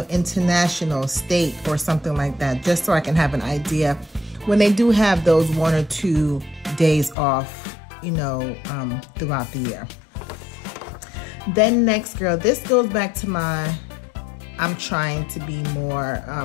international, state, or something like that, just so I can have an idea when they do have those 1 or 2 days off, you know, throughout the year. Then next, girl, this goes back to my, I'm trying to be more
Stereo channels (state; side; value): drops out; right; at 7.2 s